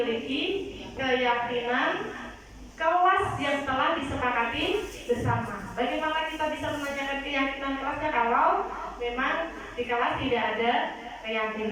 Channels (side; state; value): both; identical; correlation 1.00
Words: keyakinan kelas yang telah disepakati bersama. Bagaimana kita bisa menanyakan keyakinan kelasnya kalau memang di kelas tidak ada